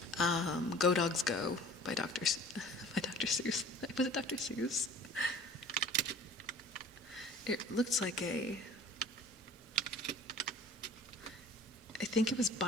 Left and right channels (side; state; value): both; normal; correlation 0.46